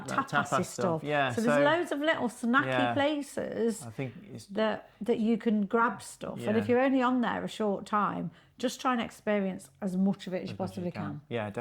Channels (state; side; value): identical; both; correlation 1.00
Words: tapas stuff. Yeah, so there's loads of little snacky places I think that you can grab stuff. And if you're only on there a short time, just try and experience as much of it as you possibly can. Yeah,